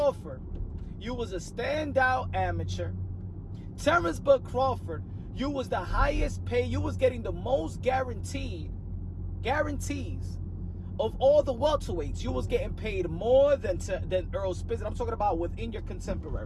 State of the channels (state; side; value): identical; both; correlation 1.00